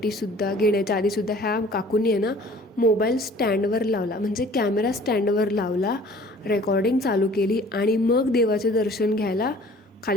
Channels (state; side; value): normal; both; correlation 0.51